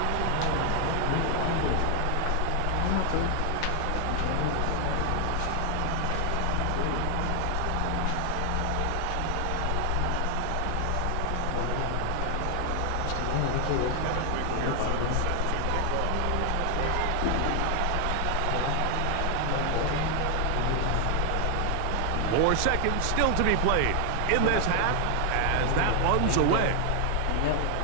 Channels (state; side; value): different; both; correlation 0.00